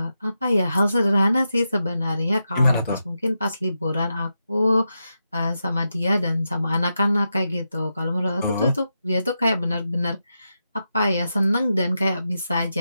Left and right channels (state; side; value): inverted; both; correlation -0.87